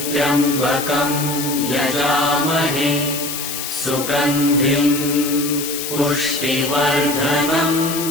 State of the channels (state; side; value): noise; left; hiss, 5 dB below the sound